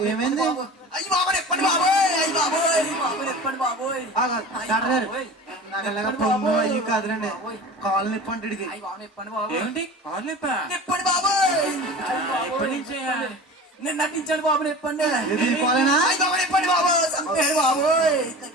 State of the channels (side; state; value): both; normal; correlation 0.36